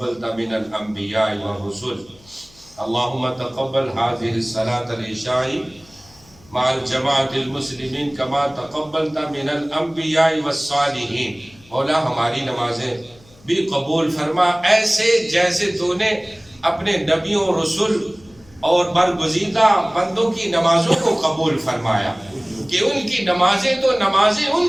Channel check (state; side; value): noise; left; hum, 27 dB below the sound